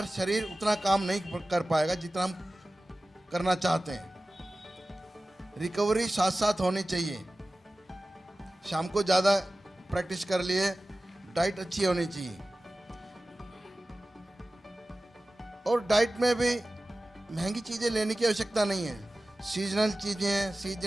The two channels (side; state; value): both; normal; correlation 0.96